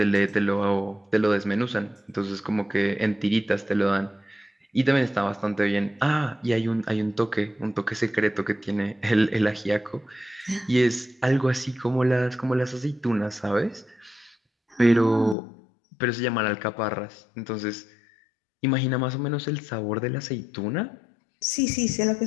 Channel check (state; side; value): drops out; right; at 15.4 s